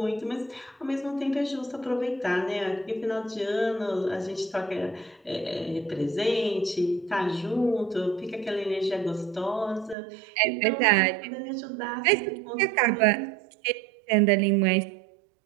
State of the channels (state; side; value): drops out; left; at 10.0 s